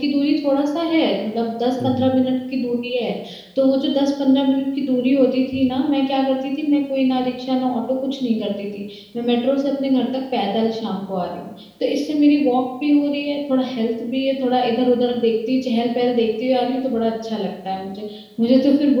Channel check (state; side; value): identical; both; correlation 1.00